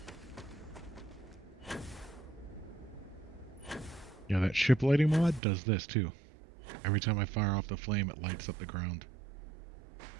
Yeah, that ship lighting mod does this too. Every time I fire off the flame, it lights up the ground.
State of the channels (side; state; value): left; drops out; at 5.4 s